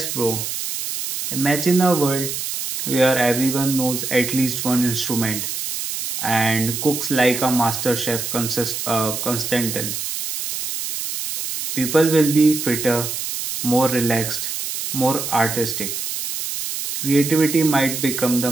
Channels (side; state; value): right; noise; hiss, 5 dB below the sound